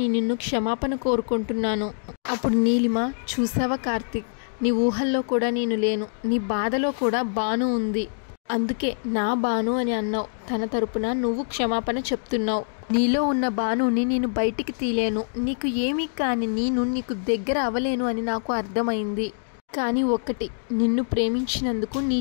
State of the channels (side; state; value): right; silent; digital silence